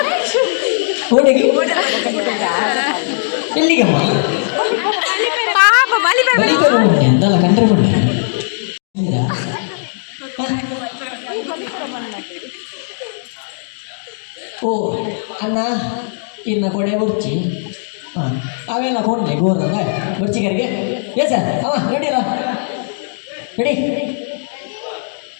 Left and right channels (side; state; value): right; silent; digital silence